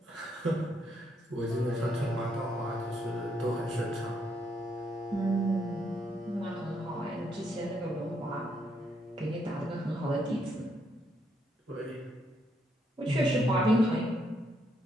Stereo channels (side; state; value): both; normal; correlation 0.75